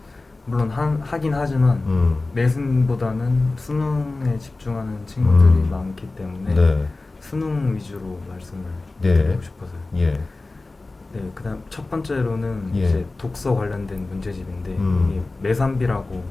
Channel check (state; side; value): quieter; right; 3.3 dB